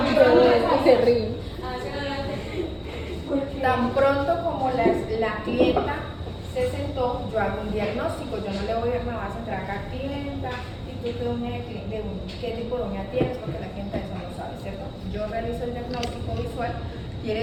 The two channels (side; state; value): both; identical; correlation 1.00